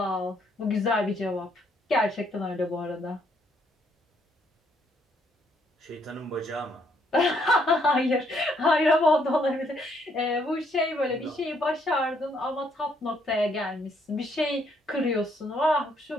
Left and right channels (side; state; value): both; normal; correlation 0.70